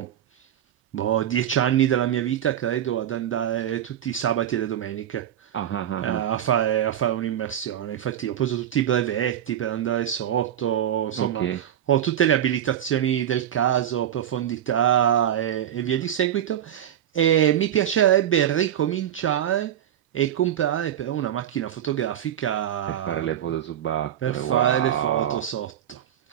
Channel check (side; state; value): left; quieter; 10.5 dB